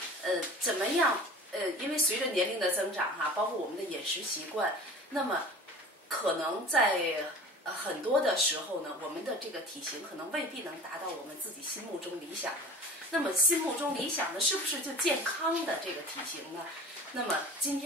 怎么样？因为随着年龄的增长哈，包括我们的饮食习惯，那么可能在很多的时候呢，我们的这个体型可能未必能达到我们自己心目中理想的。那么心目中理想的是不是就健康的这个体型呢？那么今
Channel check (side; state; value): both; normal; correlation 0.41